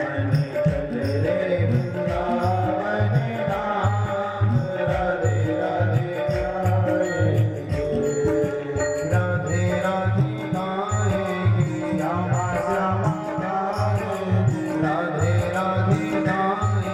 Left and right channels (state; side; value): identical; both; correlation 1.00